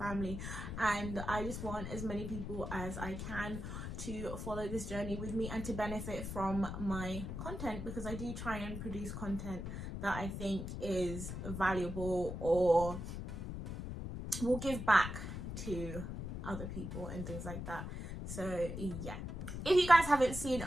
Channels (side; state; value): left; noise; rumble, 6 dB below the sound